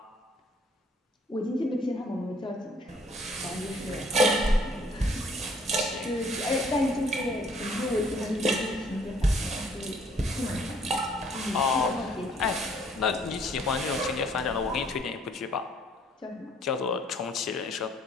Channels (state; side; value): normal; both; correlation 0.61